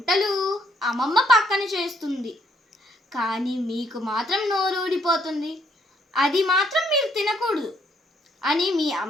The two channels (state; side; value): normal; both; correlation 0.70